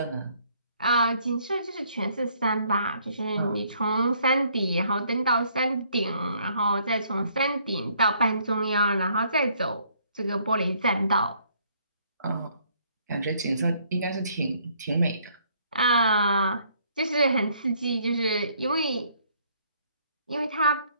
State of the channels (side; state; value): both; inverted; correlation -0.66